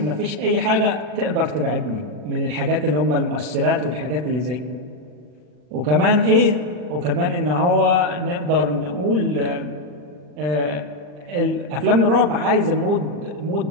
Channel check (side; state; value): left; late; 40 ms